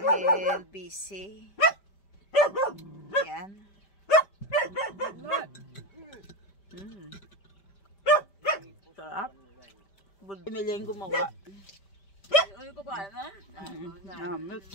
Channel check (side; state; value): right; late; 5.1 ms